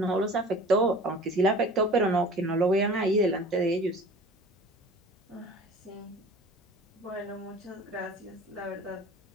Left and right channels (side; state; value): both; normal; correlation 0.43